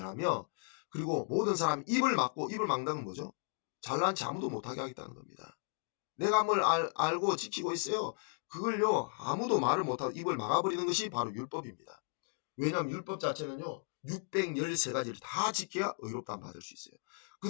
그리고 모든 사람이 입을 막는다는 건 뭐죠? 잘난 체 아무도 못하게 하겠다는 겁니다. 내가 뭘 알고 지키고 있어요. 그걸요, 아무도 말을 못하고 입을 막아버리는 것이 바로 율법입니다. 왜냐하면 율법 자체는요, 613가지를 다 지켜야 의롭다함 받을 수 있어요.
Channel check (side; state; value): right; silent; 54 dB below the other